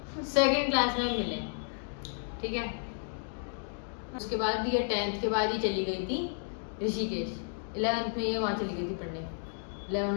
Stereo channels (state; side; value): silent; right; digital silence